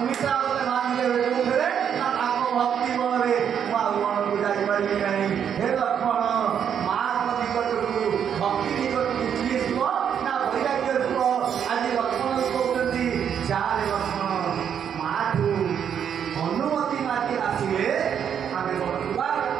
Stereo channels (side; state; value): left; quieter; 8.3 dB